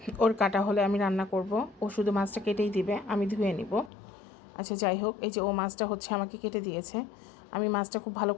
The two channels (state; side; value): drops out; right; at 3.9 s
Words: ওর কাটা হলে আমি রান্না করব। ও শুধু মাছটা কেটেই দিবে, আমি ধুয়ে নিব। আচ্ছা যাই হোক, এই যে ও মাছটা হচ্ছে আমাকে কেটে দিয়েছে। আমি মাছটা খুব ভালো